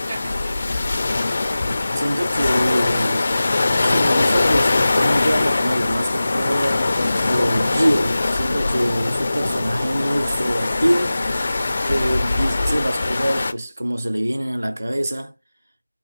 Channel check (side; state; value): both; inverted; correlation -0.97